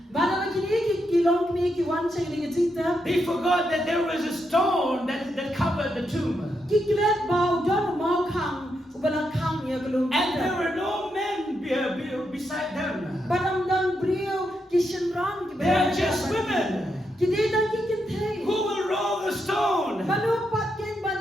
Bana lagi ni kita long kini kita wan ceng dengan cinta. they forgot that there was a stone that covered the tomb. Kita lihat bau dan mau kang, ubalang kang ya belum. And there were no men beside them. Badam dan brio kishen rang. They are just women. Kita dan kita teh. Who will roll the stone? Banu patken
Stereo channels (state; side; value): normal; both; correlation 0.82